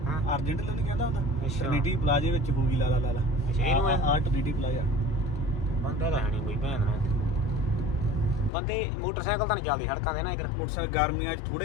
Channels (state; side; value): drops out; right; at 8.5 s